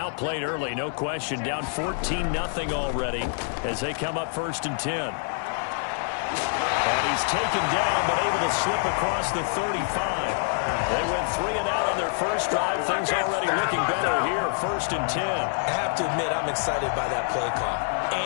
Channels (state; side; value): silent; right; digital silence